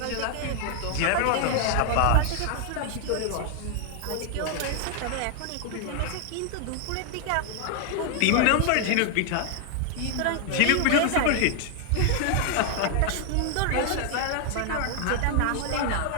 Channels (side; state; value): both; different; correlation 0.00